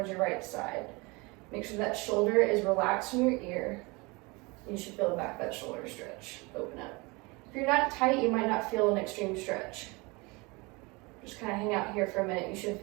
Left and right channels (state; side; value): quieter; left; 26.2 dB